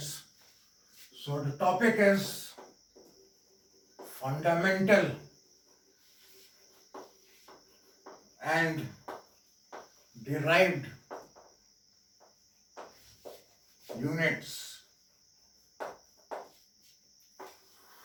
So the topic is fundamental and derived units.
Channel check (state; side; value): identical; both; correlation 1.00